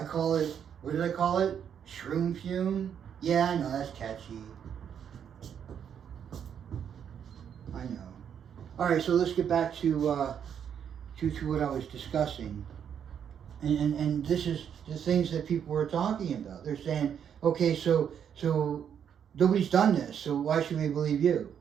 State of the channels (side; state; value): left; quieter; 8.3 dB